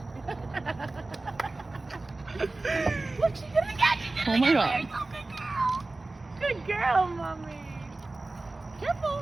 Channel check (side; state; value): left; quieter; 3.2 dB